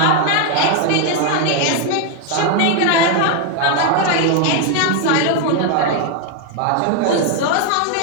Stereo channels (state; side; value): different; both; correlation 0.01